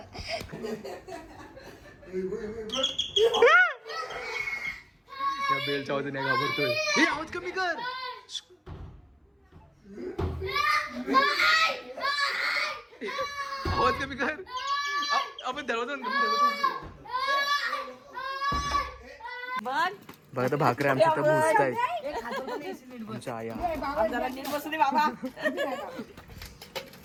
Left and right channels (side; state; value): both; identical; correlation 1.00